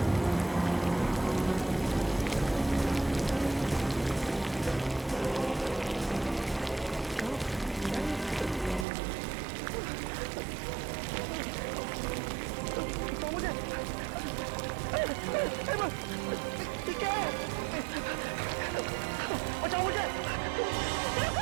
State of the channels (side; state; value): left; drops out; at 8.8 s